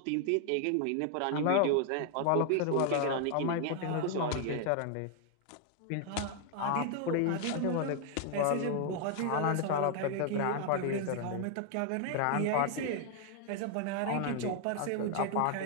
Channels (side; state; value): both; different; correlation 0.00